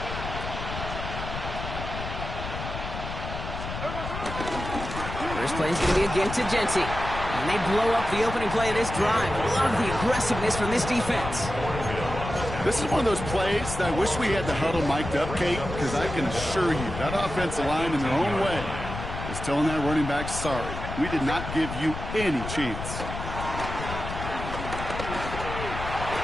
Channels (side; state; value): left; noise; rumble, 7 dB below the sound